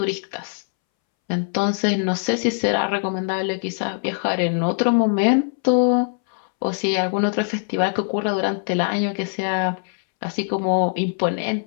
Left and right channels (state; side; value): silent; right; 64 dB below the other